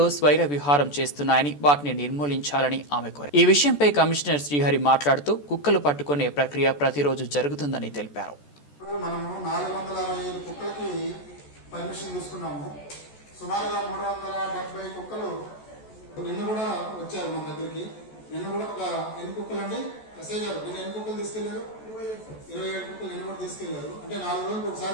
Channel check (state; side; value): late; right; 14 ms